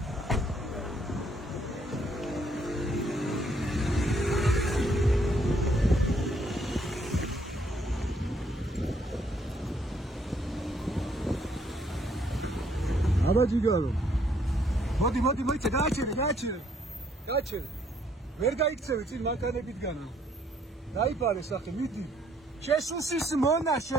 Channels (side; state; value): both; normal; correlation 0.68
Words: Აბაჯიგარო. მოდი, მოიცე, გააჩერე. ვერ გაიქცევი წინ მანქანებითგანა. დაიფარე სახე, მიდი. შესუსის მონა,